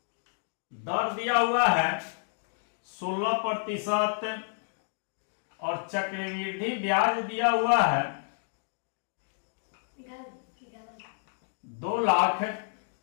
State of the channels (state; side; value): silent; right; digital silence